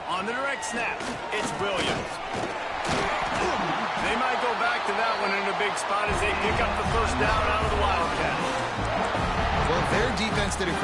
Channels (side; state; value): both; identical; correlation 1.00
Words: On the direct snap, it's Williams. They might go back to that one in a big spot as they pick up the first down out of the Wildcat. Well, their defense did a